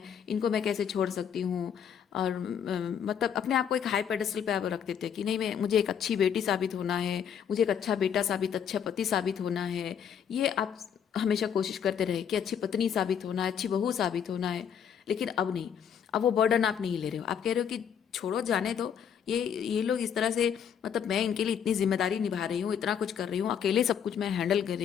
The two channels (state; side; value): quieter; right; 8.1 dB